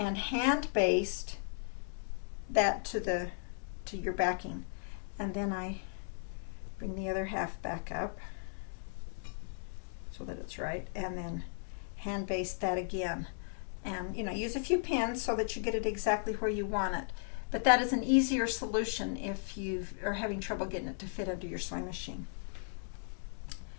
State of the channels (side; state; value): right; silent; digital silence